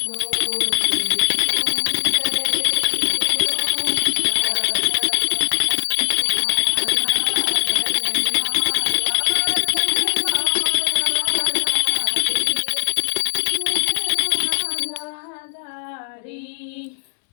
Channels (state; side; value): silent; right; digital silence